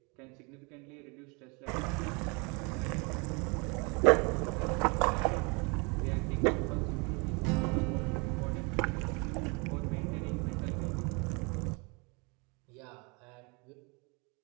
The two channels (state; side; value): quieter; left; 30.6 dB